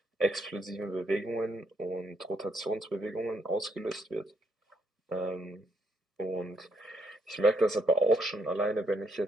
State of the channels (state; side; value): normal; both; correlation 0.74